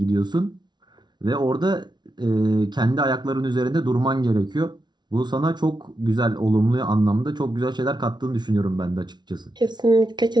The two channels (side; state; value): left; late; 0.20 ms